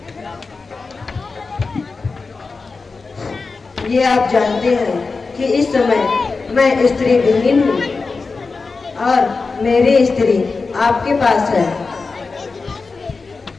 ये आप जानते हैं कि इस समय मैं स्त्री विहीन हूँ और मेरी स्त्री आपके पास है,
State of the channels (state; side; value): quieter; right; 4.2 dB